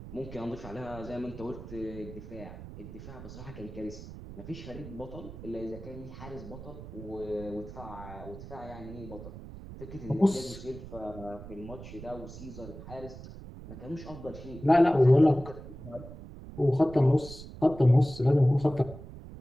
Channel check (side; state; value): right; noise; rumble, 13 dB below the sound